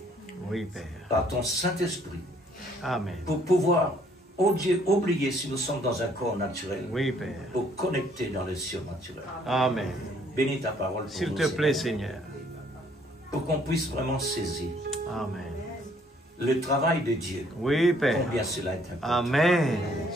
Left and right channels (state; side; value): normal; both; correlation 0.64